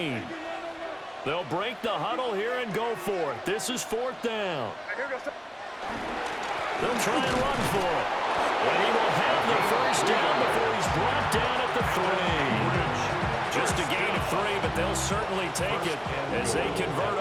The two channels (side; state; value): both; identical; correlation 1.00